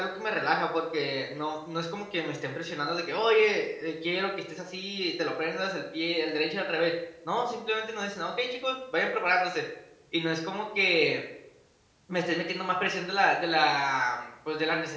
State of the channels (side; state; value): both; identical; correlation 1.00